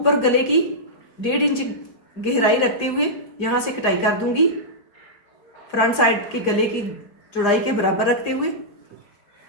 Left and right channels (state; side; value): late; right; 4.9 ms